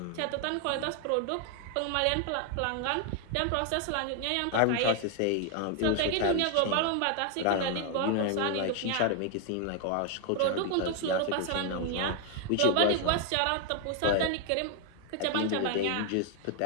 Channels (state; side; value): different; both; correlation 0.00